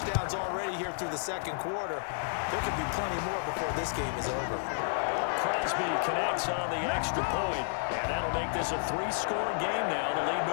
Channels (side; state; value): right; silent; digital silence